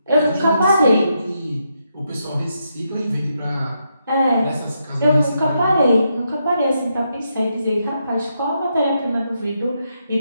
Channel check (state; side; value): inverted; both; correlation -0.81